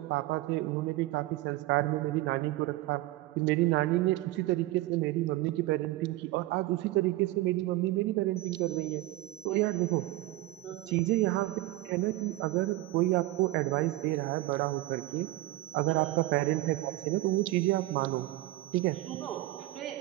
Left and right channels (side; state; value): left; quieter; 17.7 dB